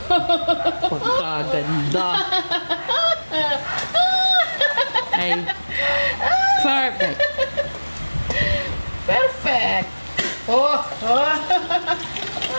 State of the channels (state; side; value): inverted; both; correlation -1.00